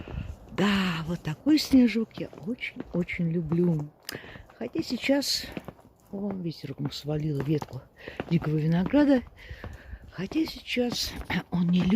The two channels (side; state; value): both; identical; correlation 1.00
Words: Да, вот такой снежок я очень-очень люблю. Хотя сейчас ветерком свалила ветку дикого винограда. Хотя сейчас он не